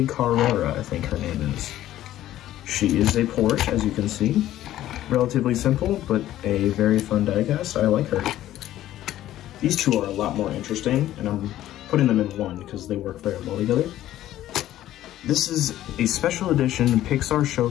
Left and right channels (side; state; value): right; quieter; 13.5 dB